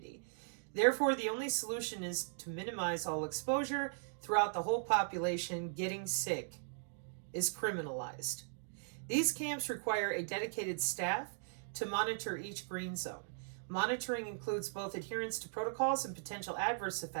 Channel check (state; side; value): silent; left; digital silence